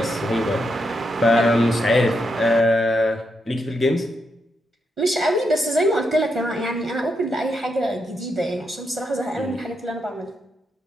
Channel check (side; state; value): both; normal; correlation 0.82